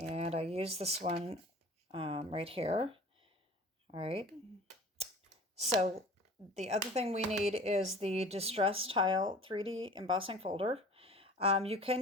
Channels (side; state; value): both; normal; correlation 0.43